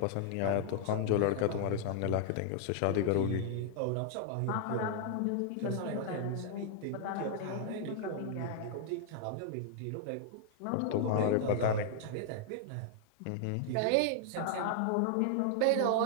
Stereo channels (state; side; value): different; both; correlation -0.01